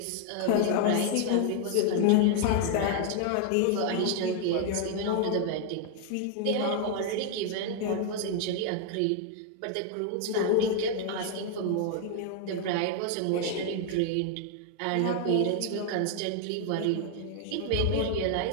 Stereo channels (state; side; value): different; both; correlation 0.00